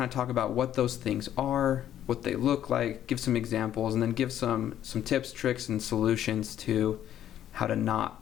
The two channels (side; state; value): right; quieter; 11.1 dB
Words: of talk about what those things are, what they look like, give some examples, and then give some tips, tricks, and solutions to how to not